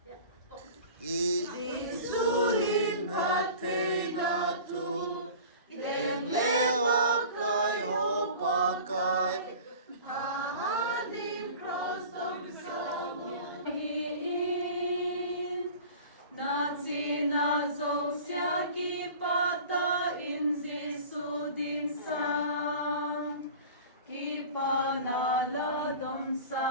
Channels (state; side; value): inverted; both; correlation -0.40